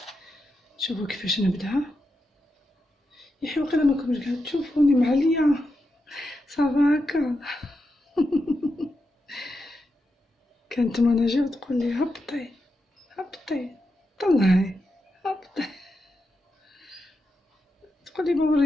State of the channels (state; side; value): normal; both; correlation 0.87